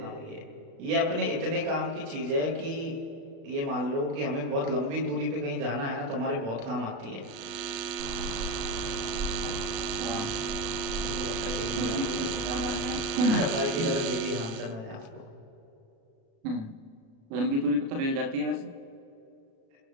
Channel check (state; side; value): late; left; 36 ms